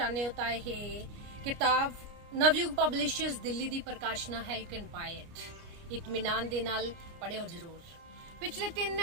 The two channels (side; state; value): left; late; 29 ms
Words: ਹੋ ਤਾਂ ਇਹ ਕਿਤਾਬ ਨਵਯੁਗ ਪਬਲਿਸ਼ਰਸ ਦਿੱਲੀ ਦੀ ਪ੍ਰਕਾਸ਼ਨਾ ਹੈ। You can buy it. ਇਤਮੀਨਾਨ ਦੇ ਨਾਲ ਪੜ੍ਹਿਓ ਜ਼ਰੂਰ। ਪਿਛਲੇ 3